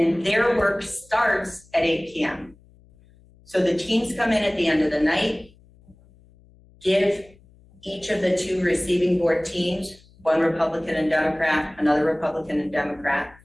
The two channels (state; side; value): noise; left; hum, 28 dB below the sound